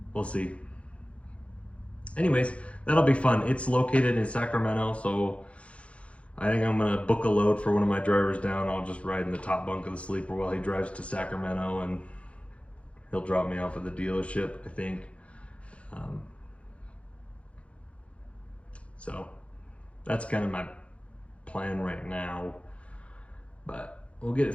we'll see. Anyways, that'll be fun. It's located in Sacramento, so I think I'm gonna book a load for one of my drivers down. I'll just ride in the top bunk of the sleeper while he drives to Sacramento, and he'll drop me off at the dealership, I think. So that's kind of my plan right now, but we'll get it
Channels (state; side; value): late; right; 0.062 ms